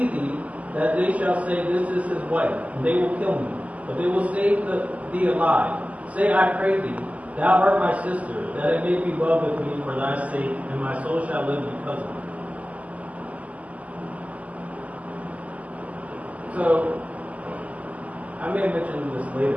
thee, that they shall say, This is his wife, and they will kill me. But they will save thee alive. Say, I pray thee, thou art my sister, that it may be well with me for thy sake, and my soul shall live because of thee. So, I may have mentioned this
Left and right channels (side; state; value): left; late; 0.072 ms